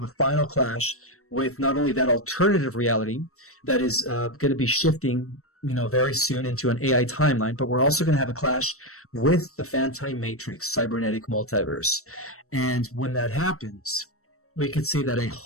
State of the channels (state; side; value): late; right; 0.64 ms